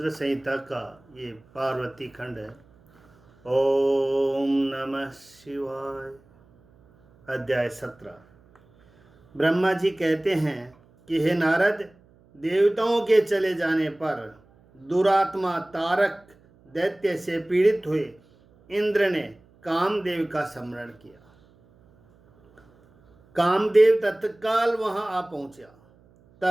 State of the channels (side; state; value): right; noise; hum, 30 dB below the sound